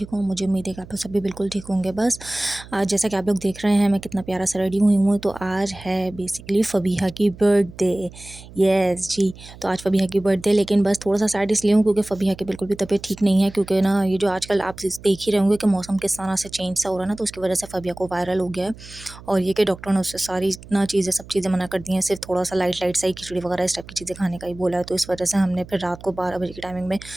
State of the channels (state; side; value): noise; right; hum, 18 dB below the sound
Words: हूँ। मुझे उम्मीद है कि आप लोग सब भी बिल्कुल ठीक होंगे। बस आज जैसा कि आप लोग देख रहे हैं मैं कितना प्यारा सा रेडी हुई हूँ। तो आज है बेसिकली फ़बीहा की बर्थडे। यस जी। तो आज फ़बीहा की बर्थडे, लेकिन बस थोड़ा सा सैड इसलिए हूँ क्योंकि फ़बीहा की बिल्कुल भी तबीयत ठीक नहीं है। क्योंकि ना ये जो आजकल आप देख ही रहे होंगे कि मौसम किस तरह से चेंज सा हो रहा है ना, तो उसकी वजह से फ़बीहा को वायरल हो गया है। और ये कि डॉक्टर ने उससे सारी ना चीज़ें सब चीज़ें मना कर दी हैं, सिर्फ थोड़ा सा लाइट लाइट सा ही खिचड़ी वगैरह इस टाइप की चीज़ें खाने का ही बोला है। तो इस वजह से हमने फिर रात को 12 बजे की टाइमिंग में